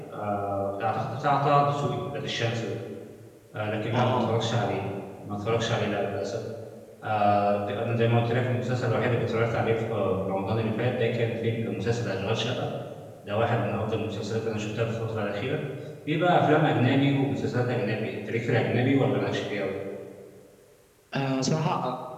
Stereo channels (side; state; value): both; identical; correlation 1.00